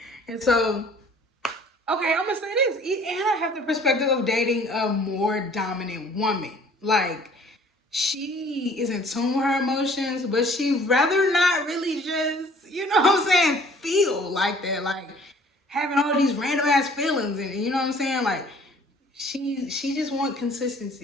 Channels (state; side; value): normal; both; correlation 0.54